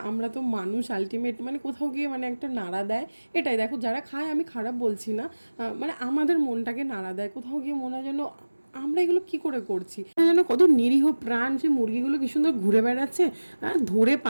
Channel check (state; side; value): inverted; both; correlation -1.00